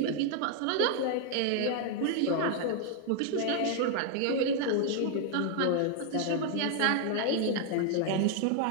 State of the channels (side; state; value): both; different; correlation 0.00